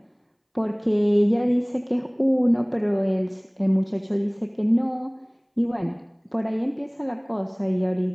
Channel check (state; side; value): identical; both; correlation 1.00